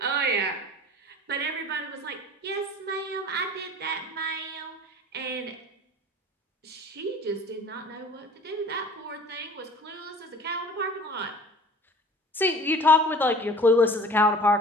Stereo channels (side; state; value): both; normal; correlation 0.45